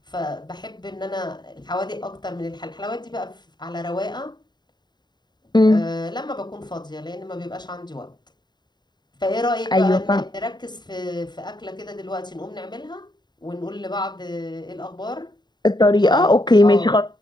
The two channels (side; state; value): right; late; 0.21 ms